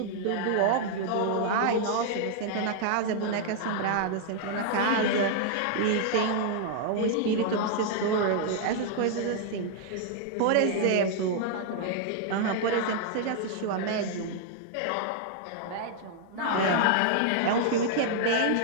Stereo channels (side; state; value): both; different; correlation -0.01